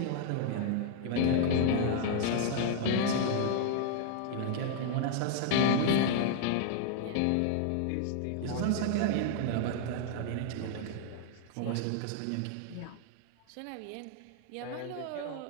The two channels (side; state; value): both; different; correlation 0.00